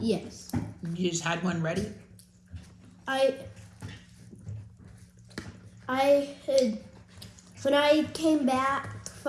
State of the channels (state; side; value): identical; both; correlation 1.00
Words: Yes. You just had one ready? I had, when I came back